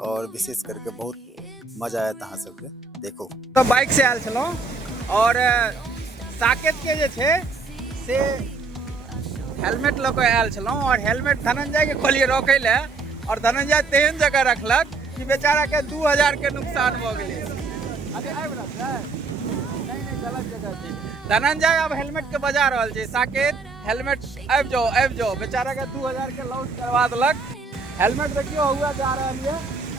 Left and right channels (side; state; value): left; quieter; 4.2 dB